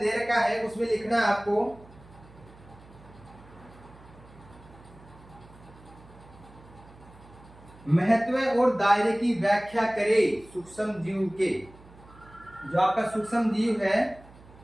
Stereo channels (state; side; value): noise; right; hum, 22 dB below the sound